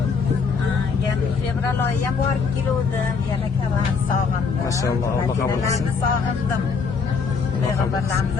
Yana fevral oyida ham borib keluvdim. Yana karam sog'indim. Maşalloh, Alloh qabul qilsin. Sog'indim. Payg'ambarlarimiz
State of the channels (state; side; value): quieter; right; 5.2 dB